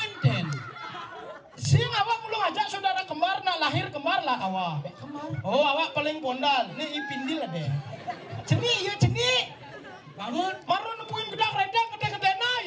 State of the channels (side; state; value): both; identical; correlation 1.00